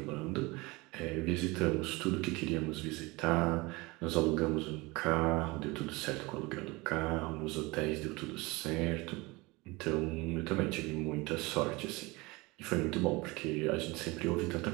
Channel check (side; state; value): left; quieter; 23.7 dB